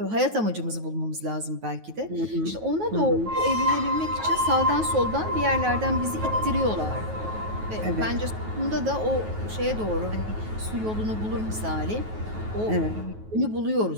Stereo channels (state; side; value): late; left; 9.3 ms